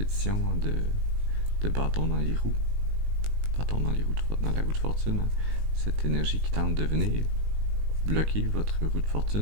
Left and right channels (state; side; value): late; left; 19 ms